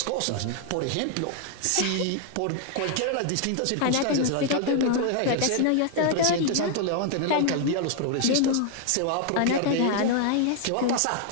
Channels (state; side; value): different; both; correlation 0.00